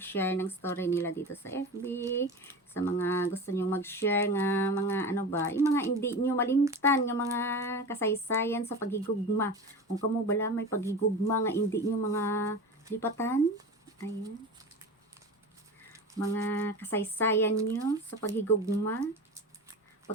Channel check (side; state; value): both; normal; correlation 0.30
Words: ng story nila dito sa FB. Sa mga gusto nyo mag-share nga mga ano ba. Yung mga hindi nyo malimtan. Yung mga kasaysayan sa paghigugma. Kung kamo bala may paghigugma nga hindi nyo mga lipatan. Ayan. Mga kasaysayan nyo sa paghigugma.